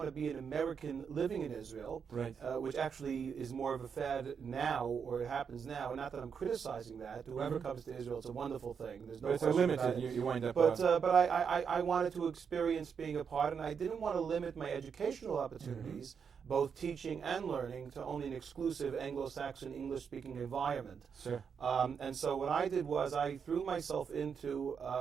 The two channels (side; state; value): left; quieter; 6.6 dB